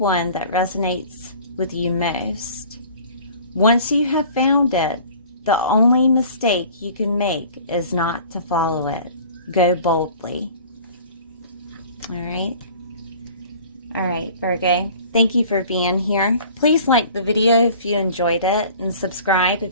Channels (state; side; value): inverted; both; correlation -0.46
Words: that resonates with you most. Once you have found it, the only mistake you can make is not to follow it. Go boldly. All right. All right, Virgo. Thank you for being here. Please like the video if you enjoyed it and subscribe